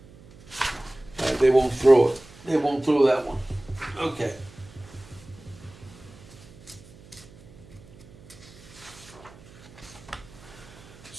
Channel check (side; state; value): right; noise; hum, 22 dB below the sound